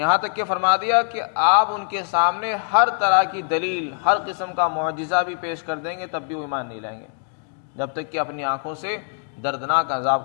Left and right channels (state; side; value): silent; right; digital silence